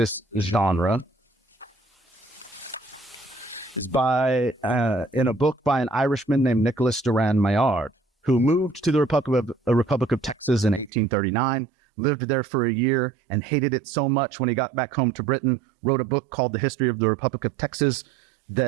genre is in a book by an Irishman named Nicholas Duran Maillard, who moved to the Republic of Texas in 1839, lived there for a year, and hated it so much when he got back home to Britain, wrote a book called The History of the Republic of Texas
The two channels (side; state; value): left; drops out; at 10.9 s